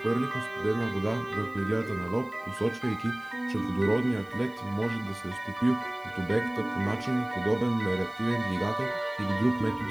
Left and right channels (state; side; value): noise; right; hiss, 30 dB below the sound